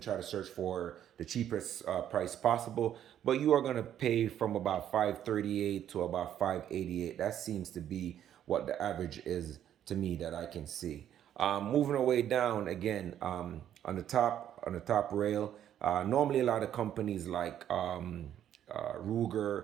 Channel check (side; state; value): left; quieter; 10.5 dB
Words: try to search for the cheapest price possible, but you are going to pay from about 538 to about 588. That seems to be what the average is to me that I can see. Moving our way down again, on the top rail. Normally, a lot of companies like